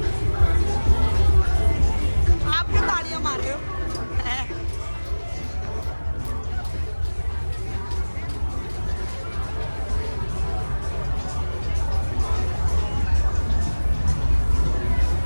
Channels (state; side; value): inverted; both; correlation -1.00